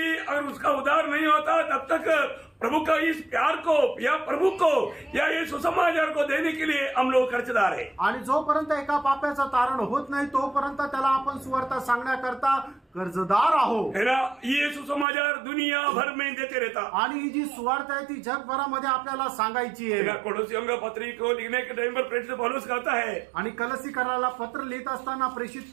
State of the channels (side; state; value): left; drops out; at 15.1 s